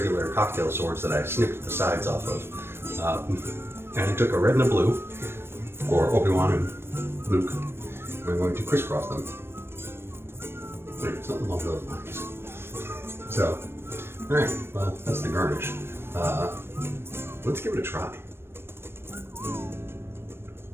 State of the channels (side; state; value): left; late; 0.12 ms